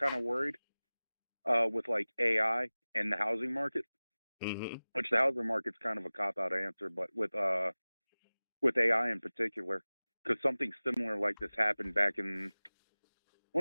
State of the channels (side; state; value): both; inverted; correlation -0.99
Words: of worried with like AI and the housing market, which the housing market's kind of a cop-out answer, but with AI in particular, because something similar like this happened back in, I